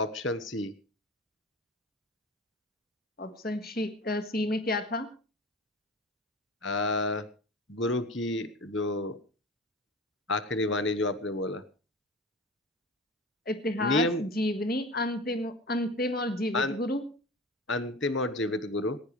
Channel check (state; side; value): normal; both; correlation 0.33